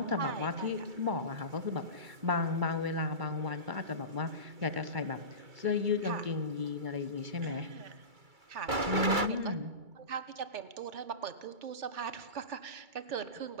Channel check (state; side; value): late; left; 2.3 ms